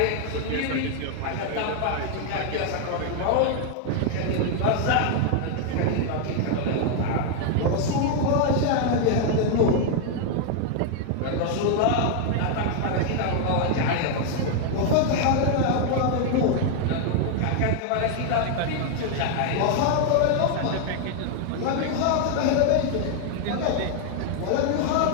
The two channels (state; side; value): different; both; correlation 0.00